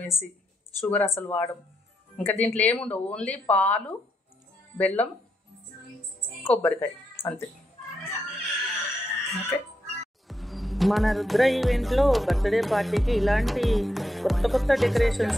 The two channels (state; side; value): normal; both; correlation 0.81